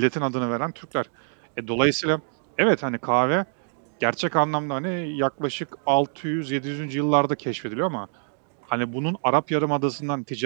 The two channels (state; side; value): silent; left; digital silence